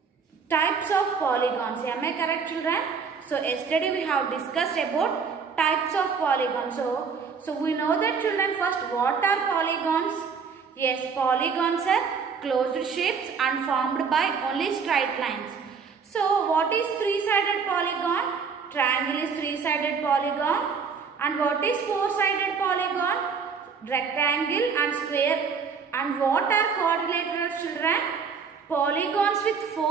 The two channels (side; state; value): left; quieter; 5.8 dB